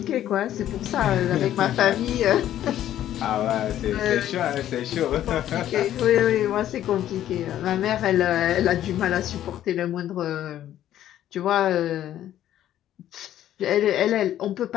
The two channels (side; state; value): right; quieter; 12.0 dB